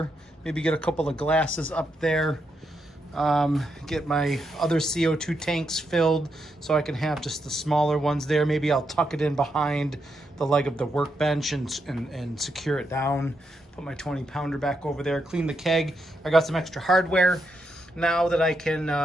Maybe get a couple of glasses up there. Get my other CO2 tanks filled so I can have just the smaller ones there. Maybe I'll tuck it in behind the leg of the workbench and secure it down. Put my 20-pounder back over there. Clean the keg. I got some extra hardware now that I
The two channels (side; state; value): both; normal; correlation 0.82